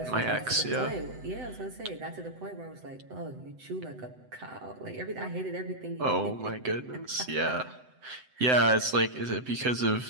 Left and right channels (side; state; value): left; late; 7.9 ms